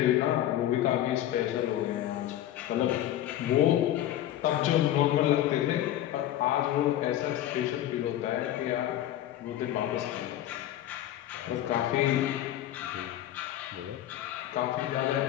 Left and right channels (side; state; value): right; quieter; 12.8 dB